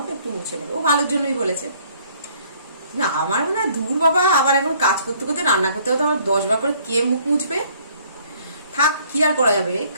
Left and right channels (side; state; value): both; inverted; correlation -0.60